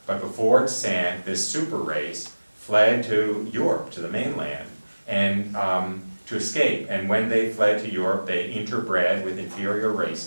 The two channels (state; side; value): inverted; both; correlation -1.00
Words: but before it sank, this super race fled to Europe, to the mainland, and to escape. And when they fled to Europe, they interbred with inferior